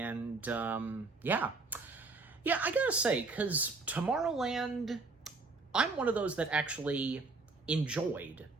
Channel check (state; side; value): quieter; left; 3.8 dB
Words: yeah. Yeah, I gotta say, because Tomorrowland, I'm one of those that actually enjoyed